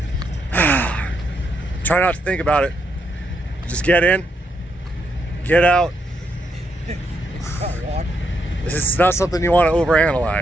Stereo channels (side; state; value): both; normal; correlation 0.79